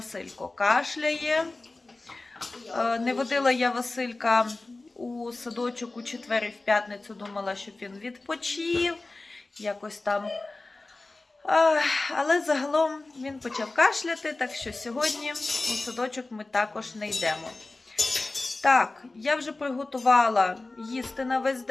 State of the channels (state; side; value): quieter; right; 3.2 dB